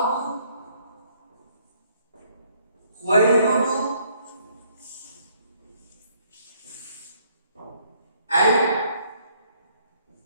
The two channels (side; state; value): both; inverted; correlation -0.66